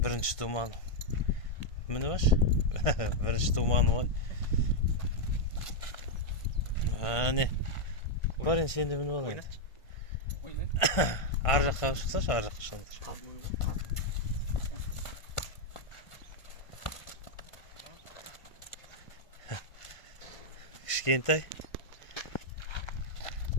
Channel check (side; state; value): right; late; 1.5 ms